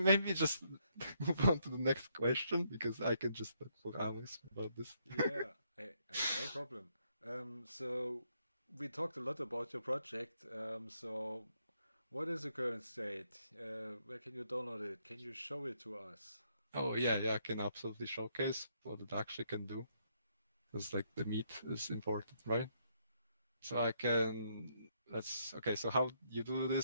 just move on to the next question because I can just talk for hours about this. Yeah, no problem. So we talked a lot about your project. So what is the current state? Where can you download it? Can you show it to us? Oh yeah, I can absolutely showcase what it actually can do because like the meat is important, right? So I can let's okay. So how you do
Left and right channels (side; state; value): both; inverted; correlation -0.73